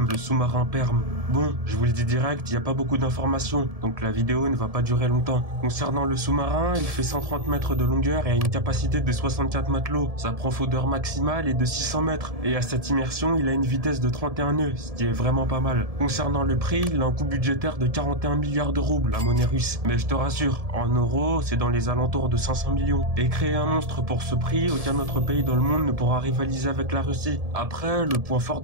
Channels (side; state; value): left; late; 1.7 ms